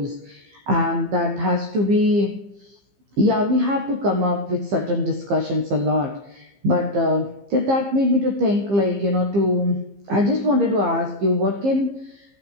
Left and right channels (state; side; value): late; left; 15 ms